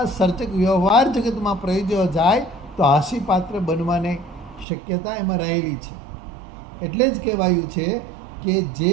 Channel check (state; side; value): drops out; left; at 4.7 s